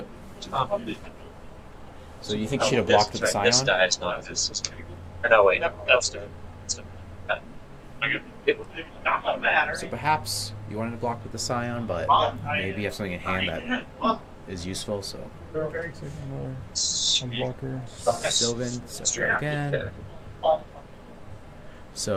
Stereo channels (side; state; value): both; identical; correlation 1.00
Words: So you think she'd have blocked with the Scion? This die is not this. Or no, wait, that's dead. So perhaps you wanted to block with the Scion, but maybe you have something in hand that is useful. So Some blocker. Sylvan, so try again.